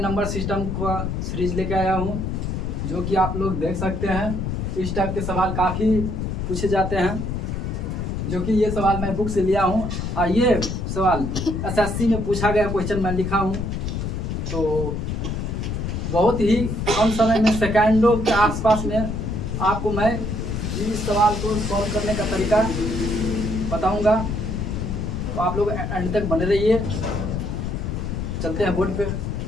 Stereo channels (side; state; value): left; noise; rumble, 3 dB below the sound